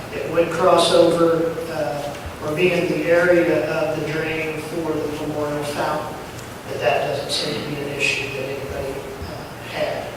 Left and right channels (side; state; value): both; identical; correlation 1.00